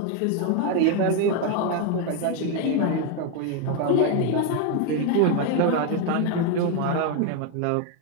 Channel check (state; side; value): different; both; correlation 0.01